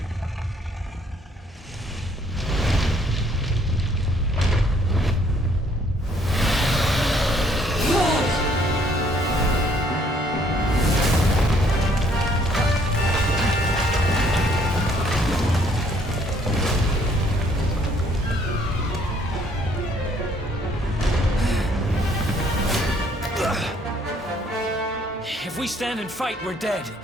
If we stand and fight, we're dead.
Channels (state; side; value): normal; both; correlation 0.64